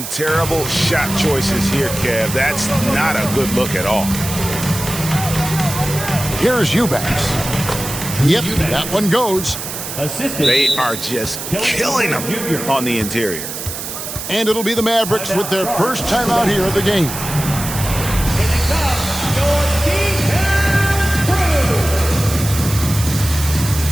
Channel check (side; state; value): right; noise; hiss, 7 dB below the sound